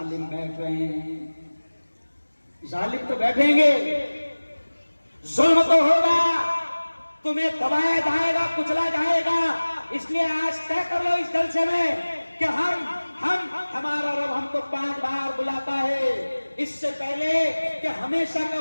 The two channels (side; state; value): both; inverted; correlation -1.00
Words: بیٹھ رہے ہیں. ظالم تو بیٹھیں گے, ظلم تو ہوگا, تمہیں دبایا جائے گا, کچلا جائے گا. اس لیے آج طے کر لو اس جلسے میں کہ ہمارا رب ہم کو 5 بار بلاتا ہے, اس سے پہلے کہ ہمیشہ کا